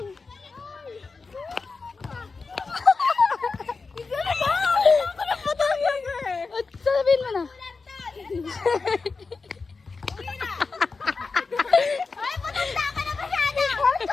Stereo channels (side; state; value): right; quieter; 4.3 dB